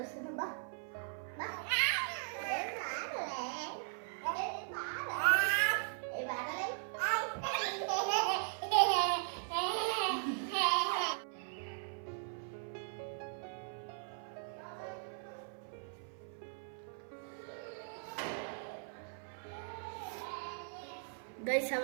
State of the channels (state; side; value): silent; left; 52 dB below the other